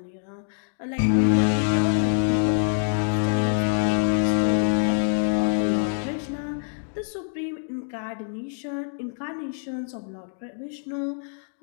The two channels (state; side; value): silent; right; digital silence